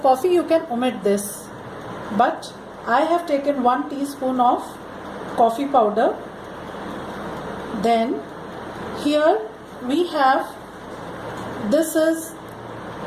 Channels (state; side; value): identical; both; correlation 1.00